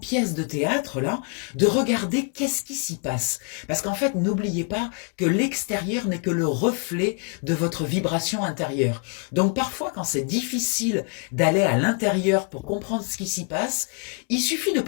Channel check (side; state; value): right; quieter; 37.2 dB